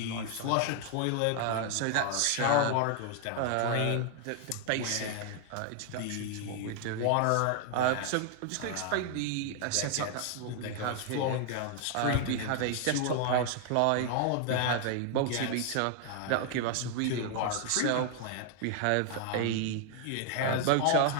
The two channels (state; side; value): different; both; correlation 0.00